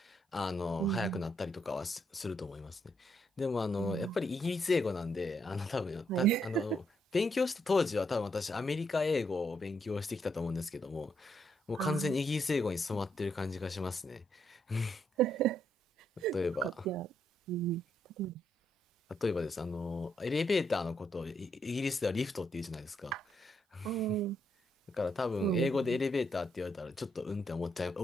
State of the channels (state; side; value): normal; both; correlation 0.76